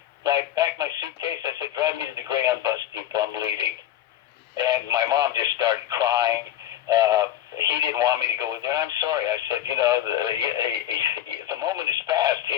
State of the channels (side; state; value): right; quieter; 11.8 dB